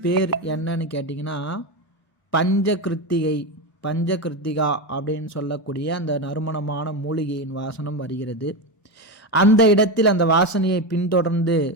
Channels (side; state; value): right; late; 1.0 ms